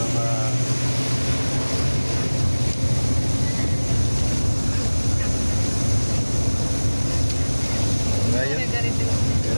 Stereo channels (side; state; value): both; inverted; correlation -1.00